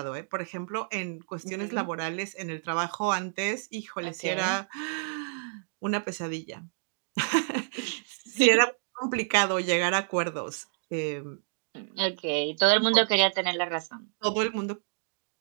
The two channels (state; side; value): silent; left; digital silence